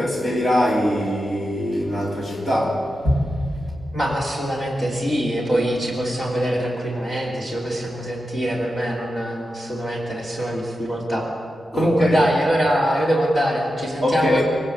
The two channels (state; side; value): normal; both; correlation 0.89